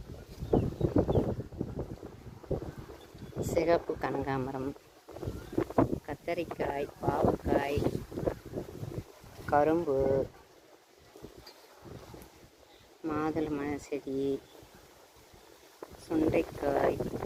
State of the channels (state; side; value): identical; both; correlation 1.00